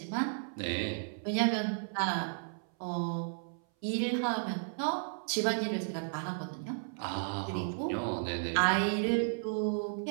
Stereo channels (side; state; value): left; silent; 55 dB below the other